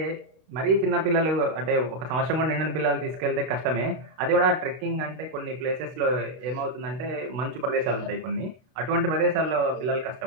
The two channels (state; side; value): late; left; 32 ms